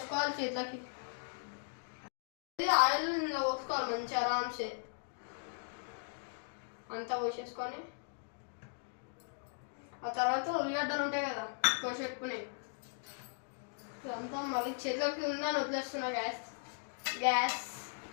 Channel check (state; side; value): silent; right; digital silence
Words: చేతులకి. ఆయిల్ ఇలా పోసుకోవాలి మంచిగా ఆరామ్సే అంతా పోసేసుకొని ఆ తర్వాత ఉల్లిగడ్డలు ఉంటాయి కదా కోసి పెట్టుకునేవి ఇదంతా మళ్ళీ చేతులకి ఉందని వదిలేస్తున్నా. గ్యాస్